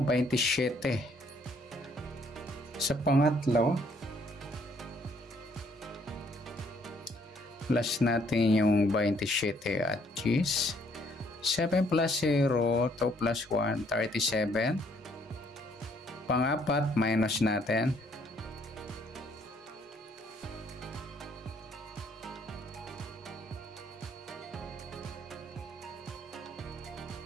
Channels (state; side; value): normal; both; correlation 0.66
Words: 27. Sa pangatlo, plus natin yung 27 at 10. 7 plus 0, 2 plus 1, 37. Pangapat, minus natin.